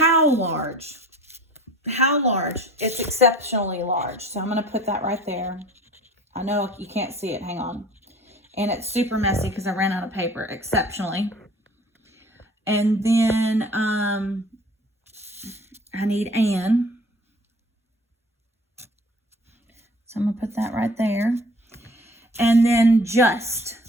large? How large? It's exceptionally large. So I'm going to put that right there. I know you can't see it. Hang on. And it's super messy because I ran out of paper. Exceptionally. And then I need an. So I'm going to put that right there. And then just.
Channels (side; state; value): both; normal; correlation 0.47